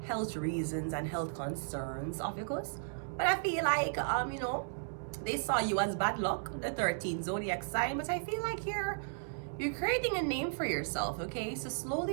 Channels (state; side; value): silent; left; digital silence